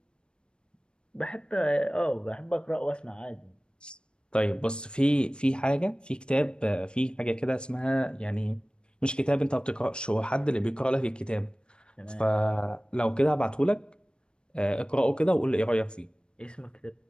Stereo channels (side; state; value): right; late; 0.053 ms